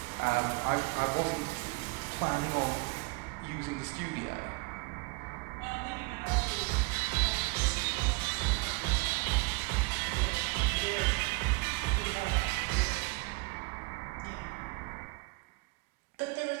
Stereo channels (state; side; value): quieter; left; 27.6 dB